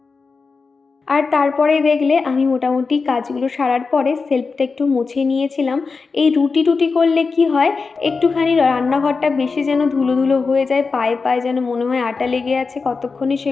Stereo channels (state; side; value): quieter; right; 4.6 dB